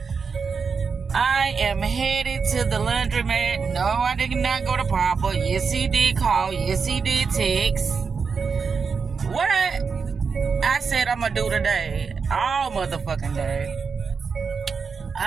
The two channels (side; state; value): left; quieter; 5.4 dB